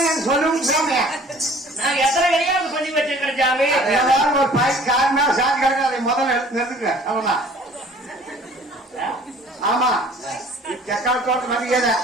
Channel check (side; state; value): both; normal; correlation 0.51